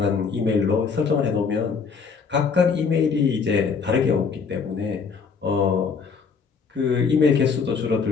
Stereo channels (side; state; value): right; quieter; 5.5 dB